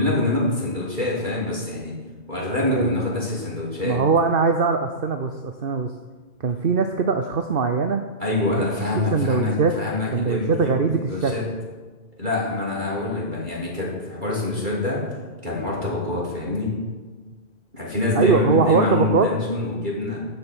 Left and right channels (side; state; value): left; late; 2.3 ms